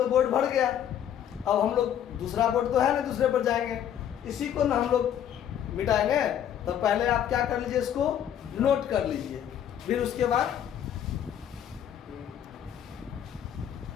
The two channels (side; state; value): right; quieter; 9.9 dB